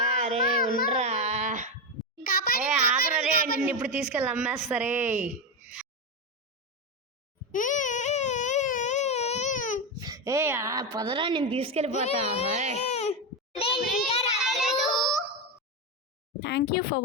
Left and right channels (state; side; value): normal; both; correlation 0.11